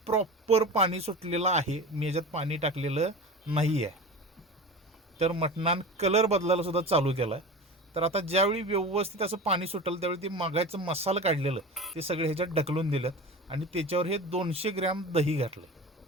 प्रॉपर पाणी सुटलेलं आहे, मी याच्यात पाणी टाकलेलं नाही आहे. तर मटणान कलर बदलायला सुद्धा चालू केला आहे. तर आता ज्यावेळी व्यवस्थित असं पाणी सुटेल त्यावेळी ते मागायचं मसाला काढलेलं ते सगळे ह्याच्यात ढकलून दिलं आणि त्याच्यावर हे 200 ग्रॅम दही घातलं.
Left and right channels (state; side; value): normal; both; correlation 0.32